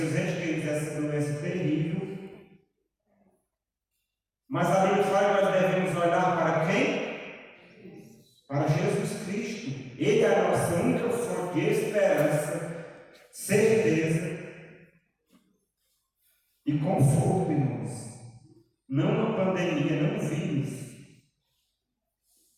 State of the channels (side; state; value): both; identical; correlation 1.00